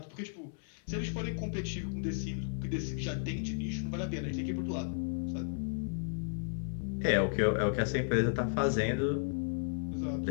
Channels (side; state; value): right; silent; 55 dB below the other